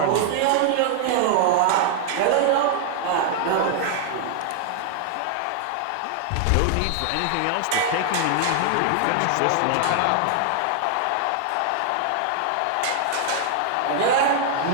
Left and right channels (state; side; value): different; both; correlation 0.00